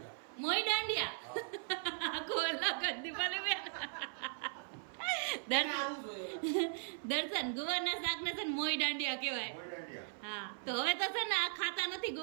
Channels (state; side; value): silent; left; 52 dB below the other